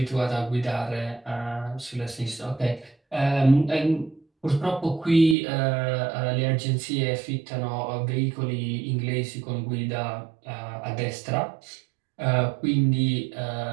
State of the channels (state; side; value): drops out; left; at 5.4 s